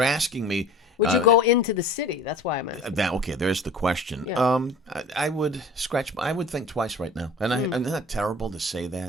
asking me... Would you go into the city? That's why I'm asking. Okay, there's the question. Yeah. I would think twice right now. And isn't that terrible to say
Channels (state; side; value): normal; both; correlation 0.42